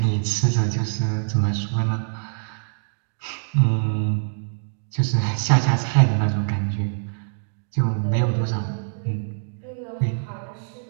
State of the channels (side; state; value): left; silent; digital silence